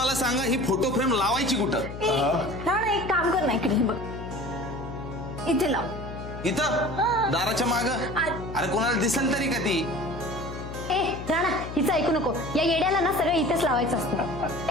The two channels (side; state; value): left; noise; hum, 9 dB below the sound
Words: सांगा, ही फोटो फ्रेम लावायची कुठं? राणा, एक काम कर ना, इकडे बघ, इथे लाव. इथं दाराच्या माग? अरे कोणाला दिसेल तरी का ती? ए राणा, हिचं ऐकू नको. या येड्याला ना सगळं इथेच लावायचं असतं.